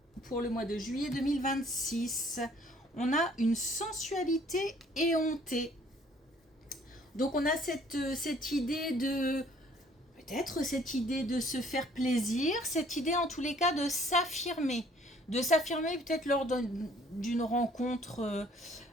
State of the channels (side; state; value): both; normal; correlation 0.58